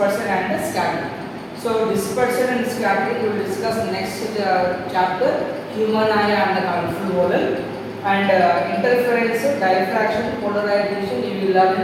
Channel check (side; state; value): both; identical; correlation 1.00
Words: and scattering. So dispersion and scattering we will discuss next chapter, human eye and the colorful model, and interference, diffraction, polarization you will learn